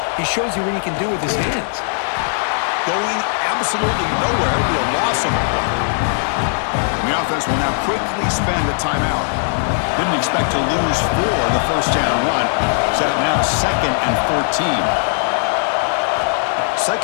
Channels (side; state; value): right; silent; 67 dB below the other